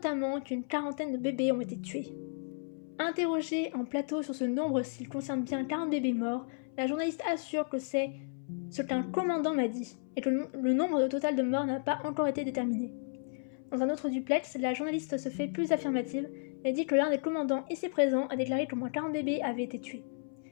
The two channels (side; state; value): right; silent; 56 dB below the other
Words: qu'une quarantaine de bébés ont été tués. Interrogée en plateau sur ce nombre s'il concerne bien 40 bébés morts, la journaliste assure que c'est ce qu'un commandant m'a dit, et que le nombre total de morts n'a pas encore été déterminé. Dans un autre duplex, la journaliste se fait plus affirmative et dit que l'un des commandants ici présents a déclaré qu'au moins 40 bébés avaient été tués.